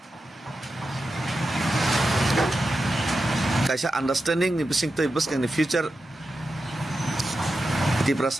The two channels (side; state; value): both; normal; correlation 0.90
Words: kaisa understanding ni bising toi buskang ni future